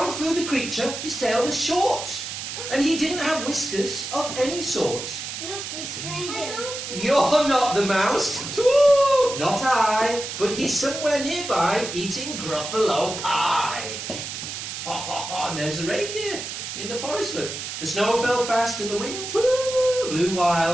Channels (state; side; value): noise; right; hiss, 7 dB below the sound